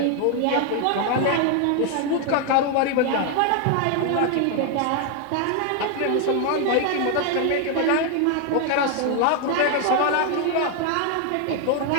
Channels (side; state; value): both; different; correlation 0.01